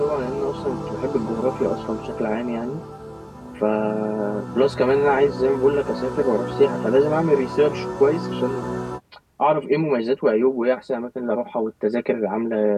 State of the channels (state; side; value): identical; both; correlation 1.00